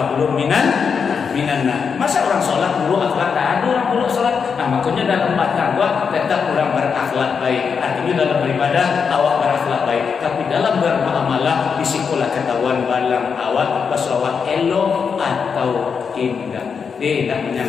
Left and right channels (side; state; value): right; quieter; 6.1 dB